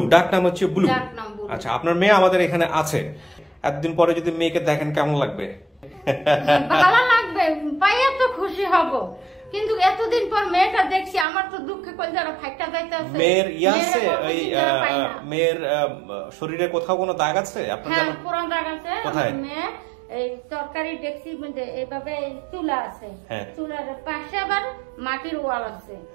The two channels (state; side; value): drops out; left; at 11.2 s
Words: ডাক নাম হচ্ছে বুলু। আচ্ছা আপনার মেয়ে আমাদের এখানে আছে, এতদিন পরে যদি মেয়েকে দেখেন কেমন লাগবে? ভালো লাগবে, পাইয়া তো খুশি হব, কিন্তু এতদিন পর মেয়েটা দেখছি আমার তো দুঃখে কলজারা ফাইটা যাইতেছে। মেয়ের আছে ওই মেয়ের শরীরে কোথাও কোনো দাগ আছে আপনার জানা? হ্যাঁ, পুরো দাগ আছে। কোথায়? মেয়ে এই তরকারি ডেকসি মধ্যে এইভাবে চুলা আছে, চুলার পাশে আবার মাটির ওয়াল আছে,